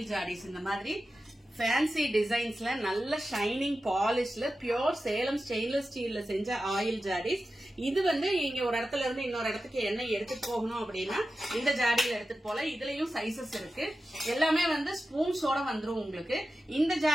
ஜாடிஸ். இந்த மாதிரி ஃபேன்சி டிசைன்ஸ்ல நல்ல ஷைனிங் பாலிஷ்ல பியூர் சேலம் ஸ்டெயின்லெஸ் ஸ்டீல்ல செஞ்ச ஆயில் ஜாடிஸ். இது வந்து நீங்க ஒரு இடத்துல இருந்து இன்னொரு இடத்துக்கு எண்ணெய் எடுத்துட்டு போகணும் அப்படின்னா இந்த ஜாடியில எடுத்துட்டு போல. இதுலயும் சைசஸ் இருக்கு. எல்லாமே வந்து ஸ்பூன்ஸோட வந்துரும் உங்களுக்கு. இந்த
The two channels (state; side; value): normal; both; correlation 0.93